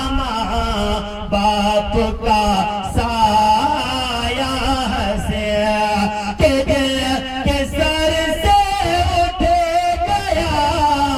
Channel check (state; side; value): identical; both; correlation 1.00